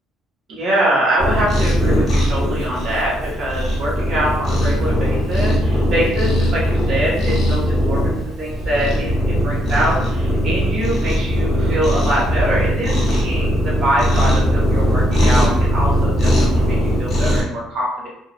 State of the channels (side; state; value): both; normal; correlation 0.77